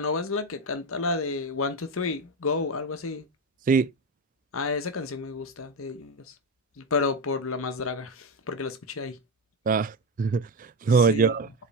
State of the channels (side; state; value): both; normal; correlation 0.14